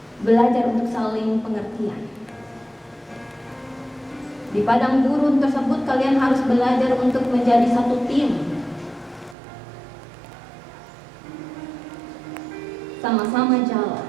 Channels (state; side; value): drops out; left; at 9.3 s